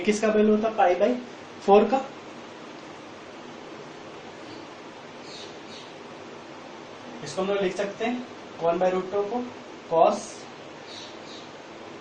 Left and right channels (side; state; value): both; identical; correlation 1.00